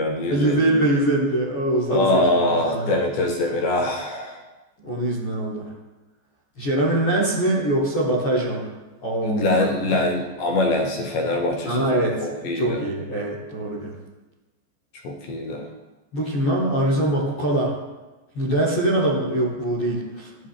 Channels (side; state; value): right; late; 14 ms